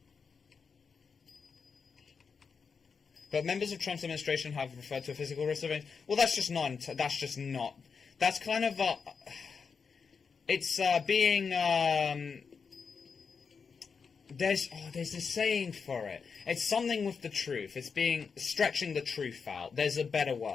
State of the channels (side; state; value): right; quieter; 5.7 dB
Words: But members of Trump's administration have referred to a physical risk of... Well, that's just not... That's kind of... it's being... There's a saying for it. It's something with the truth. It's being... Stretching the truth out. There's a better